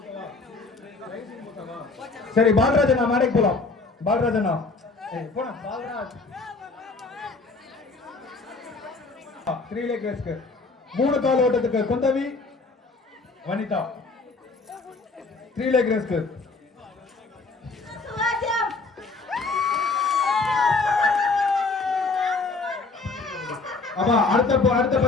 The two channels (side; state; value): right; quieter; 3.9 dB